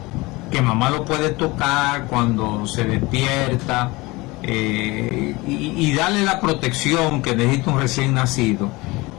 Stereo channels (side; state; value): right; quieter; 22.7 dB